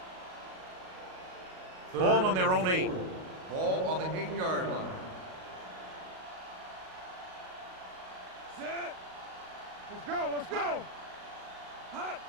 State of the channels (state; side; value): late; left; 38 ms